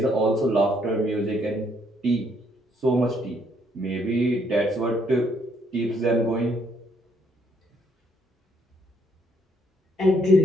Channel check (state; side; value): normal; both; correlation 0.70